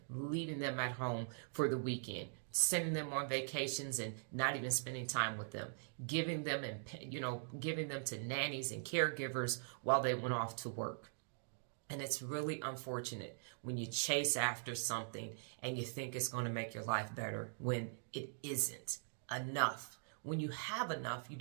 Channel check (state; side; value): silent; left; digital silence